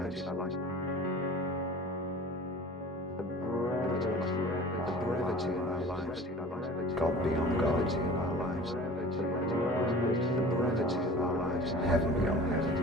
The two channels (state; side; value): normal; both; correlation 0.42